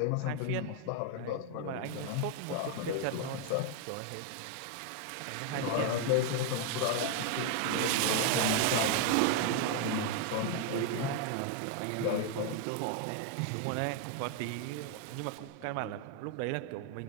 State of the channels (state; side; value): different; both; correlation 0.01